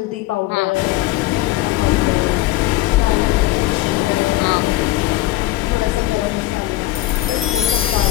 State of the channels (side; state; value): right; quieter; 16.6 dB